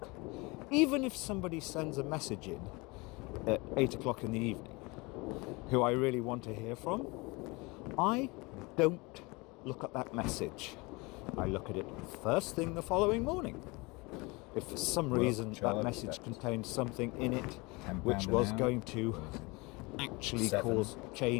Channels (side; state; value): right; quieter; 25.6 dB